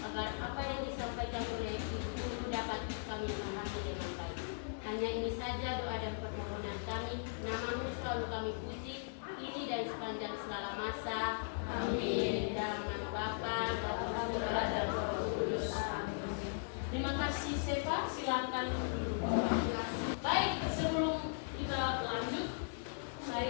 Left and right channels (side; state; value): right; silent; digital silence